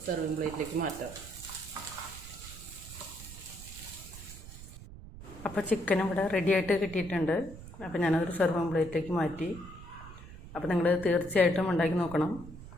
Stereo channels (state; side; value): noise; right; rumble, 14 dB below the sound